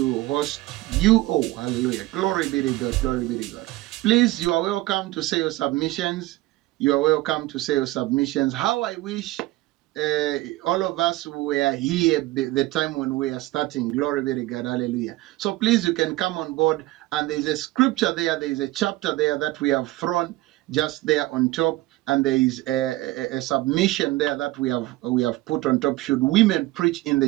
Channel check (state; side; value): quieter; left; 18.3 dB